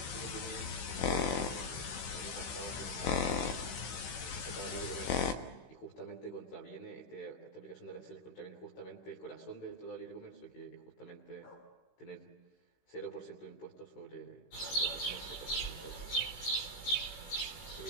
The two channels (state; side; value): late; right; 16 ms